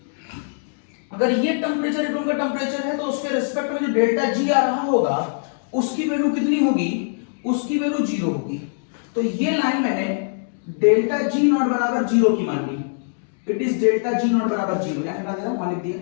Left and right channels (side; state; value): right; silent; digital silence